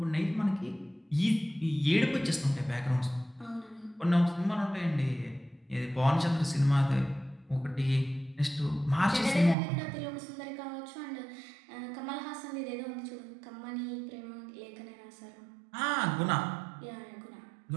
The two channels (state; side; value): drops out; left; at 9.6 s